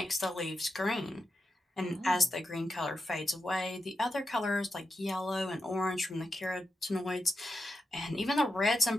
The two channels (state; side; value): normal; both; correlation 0.88